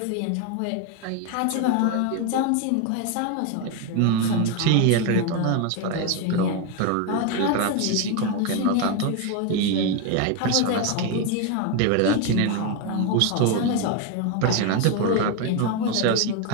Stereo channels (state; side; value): different; both; correlation 0.02